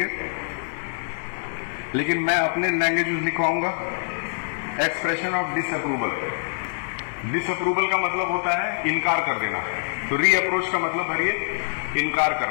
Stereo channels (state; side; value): silent; right; 62 dB below the other